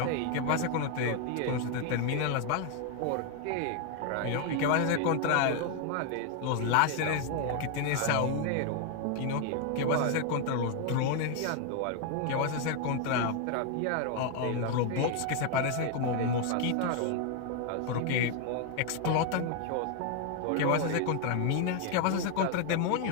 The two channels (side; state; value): both; different; correlation 0.00